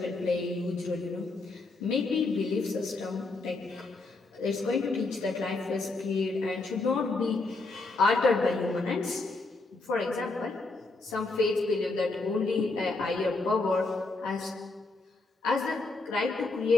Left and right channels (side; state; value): right; quieter; 3.4 dB